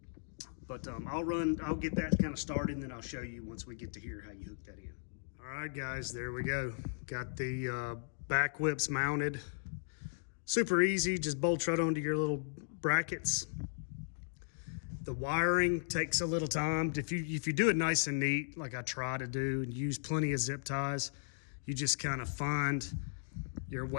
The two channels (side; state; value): right; silent; digital silence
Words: But I'll get that kind of started, and then I'll show you once we get to here how you hook that in. All right, guys, there we go. Got the back whips mounted. Super easy, just bolt right onto your little brackets. The wiring takes a little time. If you do it nice and neat, like I try to do, and use plenty of zip ties, you just kind of find your